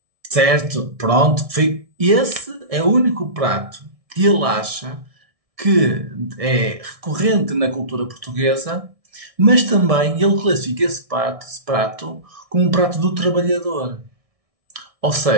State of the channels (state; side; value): late; left; 1.6 ms